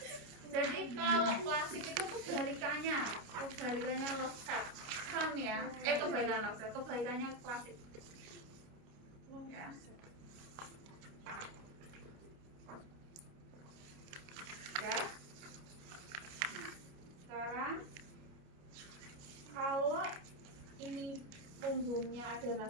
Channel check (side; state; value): left; late; 29 ms